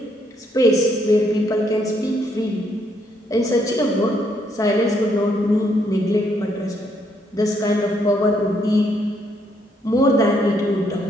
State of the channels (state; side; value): normal; both; correlation 0.72